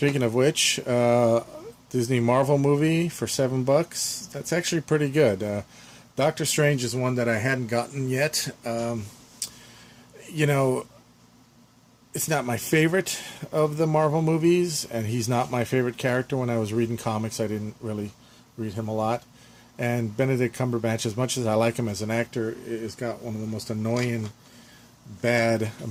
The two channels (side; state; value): both; identical; correlation 1.00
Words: of which, Disney Marvel movie for $7, that's actually pretty good. Doctor Strange is one that I hadn't gotten yet. You know, it's not my favorite of the Marvel movies, and he's not my favorite character. When I was reading comics, I didn't really read him a lot. And Benedict Cumberbatch, as much as I like him as an actor, has got one of the most annoying, bad